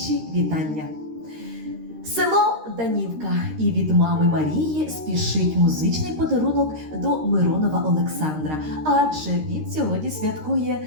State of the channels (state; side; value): late; left; 13 ms